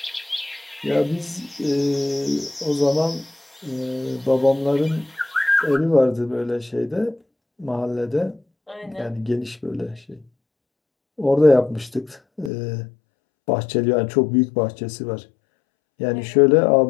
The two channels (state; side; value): drops out; right; at 12.5 s